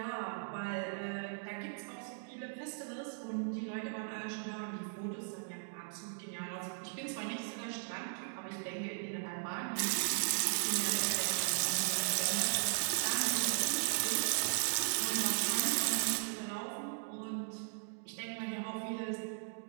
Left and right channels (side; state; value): left; silent; digital silence